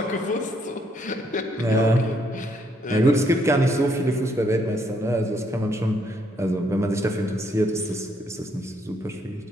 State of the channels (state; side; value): normal; both; correlation 0.72